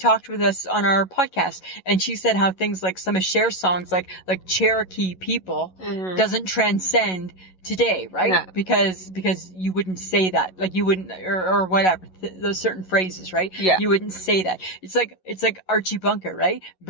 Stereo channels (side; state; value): right; late; 11 ms